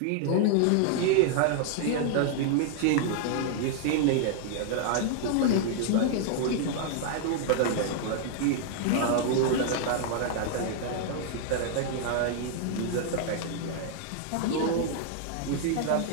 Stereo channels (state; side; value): different; both; correlation 0.00